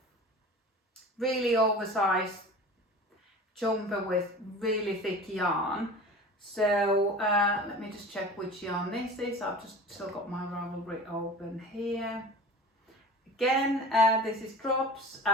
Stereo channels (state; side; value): normal; both; correlation 0.37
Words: really oversized jumper with really thick yarn. So let me just check which yarn this is. I've just still got my Ravelry open here. again, this is Drops,